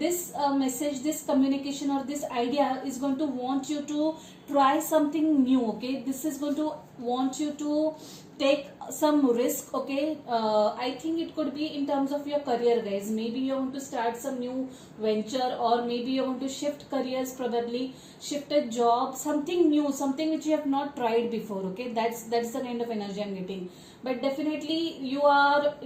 this communication, or this idea is going to want you to try something new. Okay, this is going to want you to take some risk. Okay, I think it could be in terms of your career guys. Maybe you want to start some new venture, or maybe you want to shift careers, probably shift a job, something new, something which you have not tried before. Okay, that's the kind of energy I'm getting. But definitely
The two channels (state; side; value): identical; both; correlation 1.00